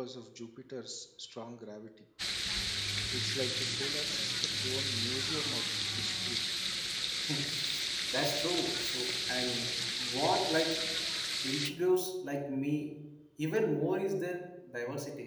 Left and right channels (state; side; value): identical; both; correlation 1.00